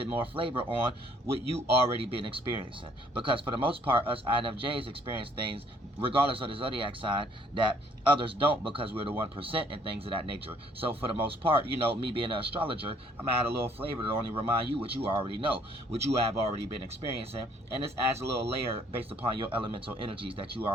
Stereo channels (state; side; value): normal; both; correlation 0.63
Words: more flavor on what you already been experiencing. Because for the most part, us INFJs experience things, regardless of the zodiac sign, that others don't, because we're the 1% and things of that nature. So for the most part, you know, me being an astrologer, I'm gonna add a little flavor to only remind you what you already know, what you have already been experiencing, and this adds a little layer based upon your elemental energies that you